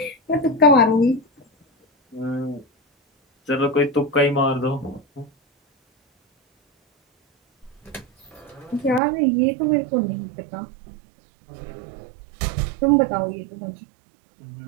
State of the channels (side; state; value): left; drops out; at 9.0 s